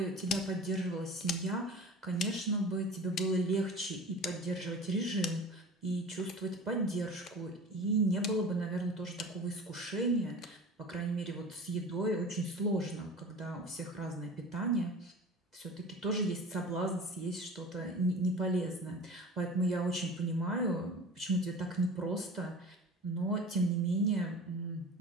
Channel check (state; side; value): normal; both; correlation 0.38